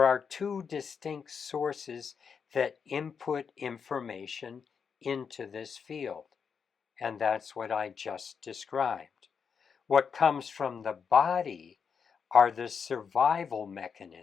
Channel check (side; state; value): right; quieter; 6.3 dB